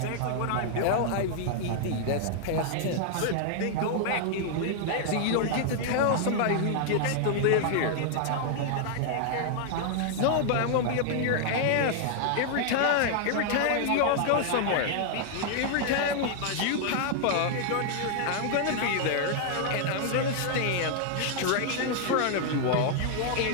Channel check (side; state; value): both; different; correlation 0.00